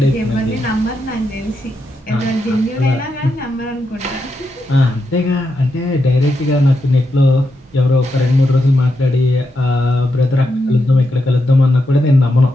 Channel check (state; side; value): normal; both; correlation 0.84